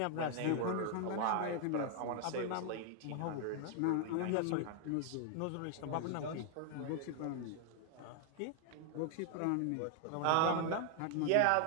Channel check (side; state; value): both; different; correlation 0.00